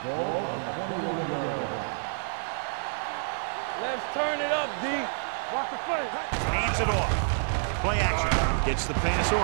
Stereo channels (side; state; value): left; silent; 59 dB below the other